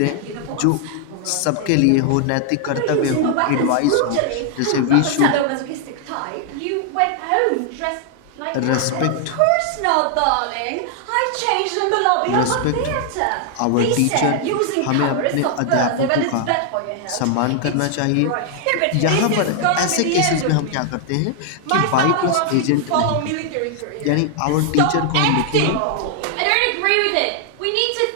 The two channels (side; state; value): both; different; correlation 0.00